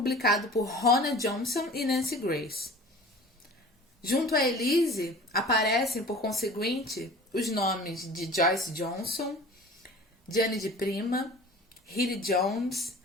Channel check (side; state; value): both; normal; correlation 0.42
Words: por Rona Johnson e Nancy Grace. Junto a Elise, aparecem, por conseguinte, os nomes de Joyce Johnson, Gianni de Prima, Hilly Jones,